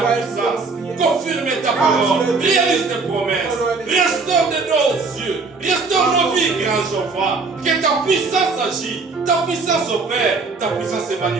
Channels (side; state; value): left; quieter; 4.2 dB